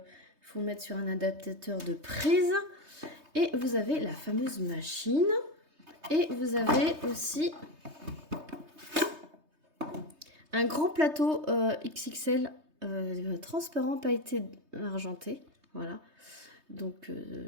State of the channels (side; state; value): left; late; 3.2 ms